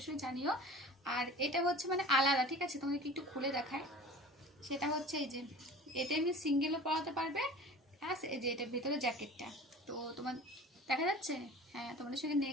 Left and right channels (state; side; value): normal; both; correlation 0.40